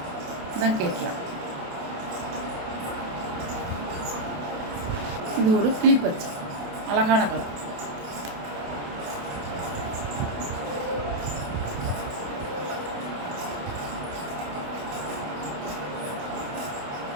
இதான் கேட்கலாம். இது ஒரு கிளிப்பச்சை, அழகான கலர்.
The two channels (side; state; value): left; late; 28 ms